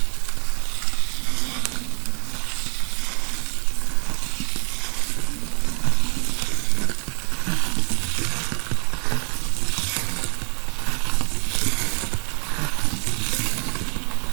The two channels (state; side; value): quieter; left; 39.2 dB